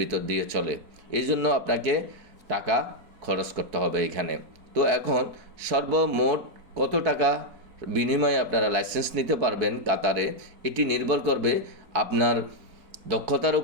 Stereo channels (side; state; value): left; late; 4.5 ms